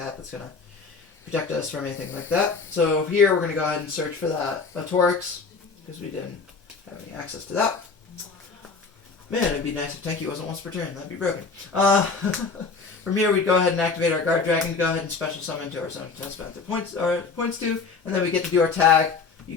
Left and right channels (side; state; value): right; quieter; 4.7 dB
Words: that's going to protect us from anything like that. So here, we're going to go ahead and search for that Autorix, because we didn't have any access to that. Man, it'd be nice if Tenki wasn't once per turn. That'd be broken. From here, we'd go ahead and activate our Guard Dragon to go ahead and special summon to our Zone Test Panther points to, and then we get to do our tag. You